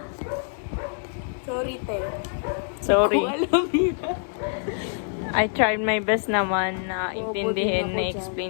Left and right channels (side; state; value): right; silent; digital silence